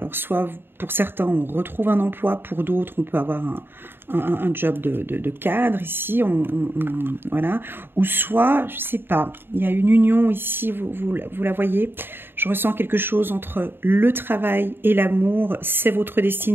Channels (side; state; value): left; late; 0.10 ms